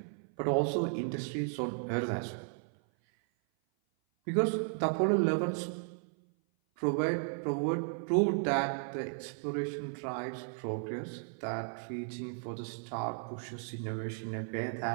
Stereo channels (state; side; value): silent; left; 55 dB below the other